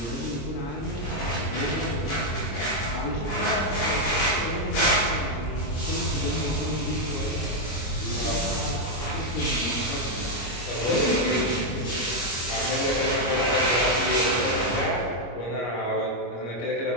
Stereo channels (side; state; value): right; late; 26 ms